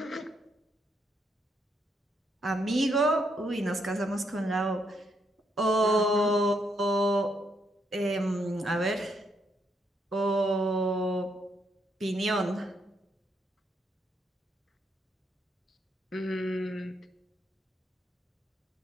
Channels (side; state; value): both; normal; correlation 0.76